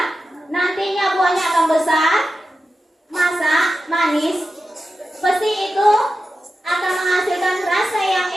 nantinya buahnya akan besar, masak, manis. Pasti itu akan menghasilkan rasa yang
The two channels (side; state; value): both; normal; correlation 0.92